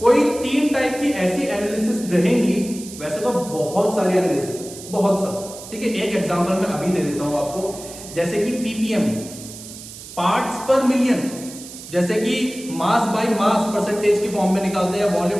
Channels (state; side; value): noise; right; hiss, 14 dB below the sound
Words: कोई 3 टाइप की ऐसी एनालिसिस रहेंगी, वैसे तो बहुत सारी एनालिसिस, बहुत सारी। ठीक है, एक एग्जांपल मैं अभी दे देता हूं आपको, जैसे कि पीपीएम, पार्ट्स पर मिलियन, जैसे कि मास बाय मास परसेंटेज की फॉर्म में निकालते हैं,